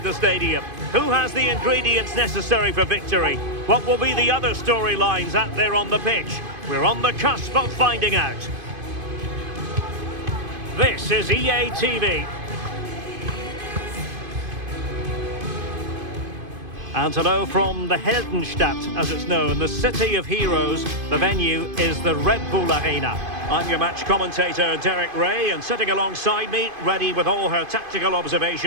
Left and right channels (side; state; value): left; late; 2.5 ms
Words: the stadium. Who has the ingredients necessary for victory? What will be the other storylines out there on the pitch? We're on the cusp of finding out. This is EA TV. And hello from the Heldenstadt, as it's known, the city of heroes. The venue is the Red Bull Arena. I'm your match commentator, Derek Ray, and sitting alongside me, ready with all her tactical